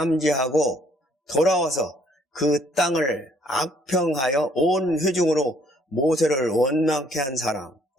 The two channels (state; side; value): normal; both; correlation 0.64